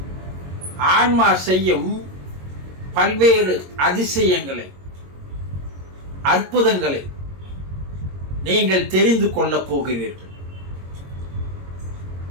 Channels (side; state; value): left; late; 22 ms